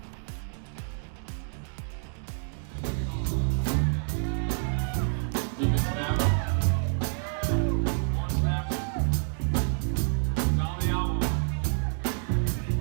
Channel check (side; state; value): left; silent; 59 dB below the other